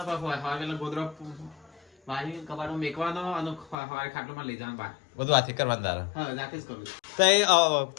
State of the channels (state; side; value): drops out; right; at 3.8 s